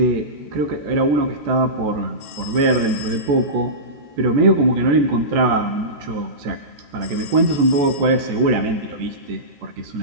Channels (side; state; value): left; late; 14 ms